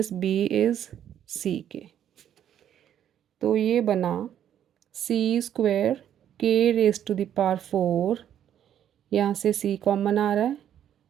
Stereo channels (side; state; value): left; quieter; 10.1 dB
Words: B is सी के। तो ये बना C square K raise to the power 4, यहाँ से सी common आ रहा है